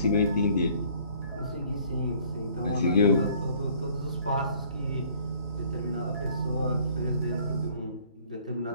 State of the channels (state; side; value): inverted; both; correlation -0.57